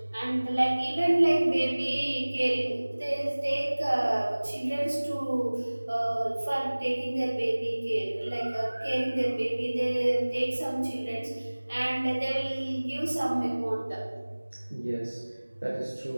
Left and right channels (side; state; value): both; inverted; correlation -1.00